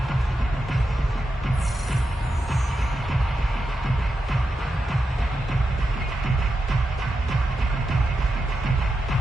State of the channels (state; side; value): normal; both; correlation 0.88